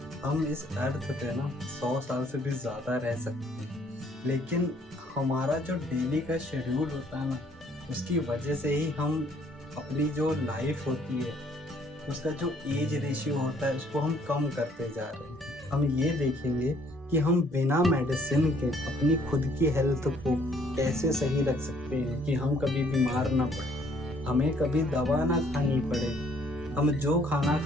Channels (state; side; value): normal; both; correlation 0.63